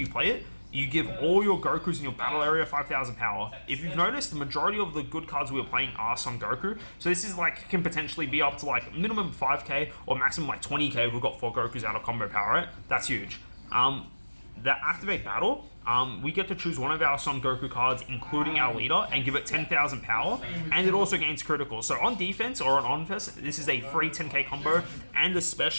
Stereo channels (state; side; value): inverted; both; correlation -1.00